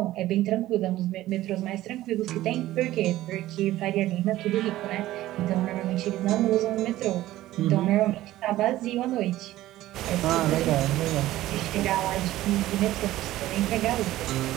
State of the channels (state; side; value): quieter; left; 15.3 dB